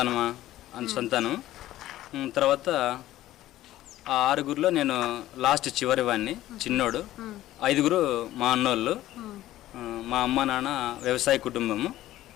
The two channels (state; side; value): quieter; right; 14.6 dB